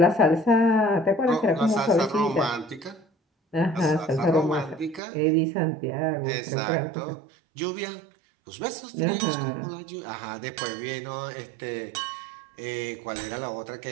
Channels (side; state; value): left; drops out; at 5.0 s